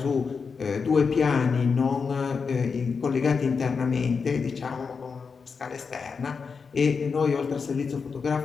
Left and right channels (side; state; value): right; quieter; 5.3 dB